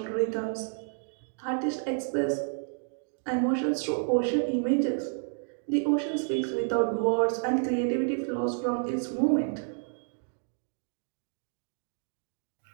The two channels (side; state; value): left; silent; digital silence